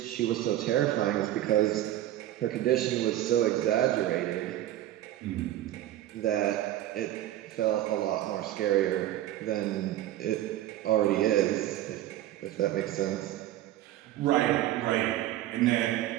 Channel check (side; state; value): left; quieter; 13.7 dB